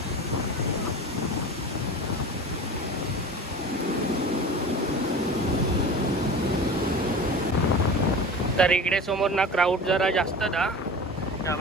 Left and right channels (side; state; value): both; normal; correlation 0.34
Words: तर इकडे समोर ना क्राऊड जरा जास्त दा